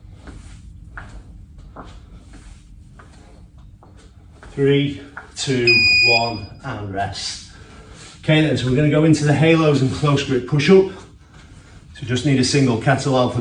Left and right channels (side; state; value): both; identical; correlation 1.00